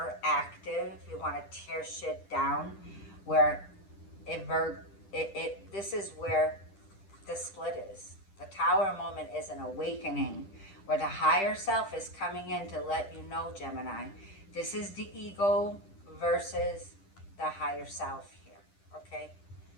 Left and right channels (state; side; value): late; right; 10 ms